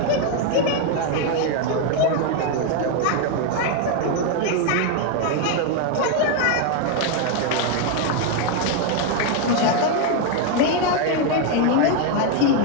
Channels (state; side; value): different; both; correlation 0.01